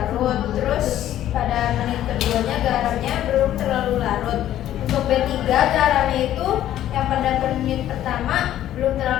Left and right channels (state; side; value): quieter; right; 12.3 dB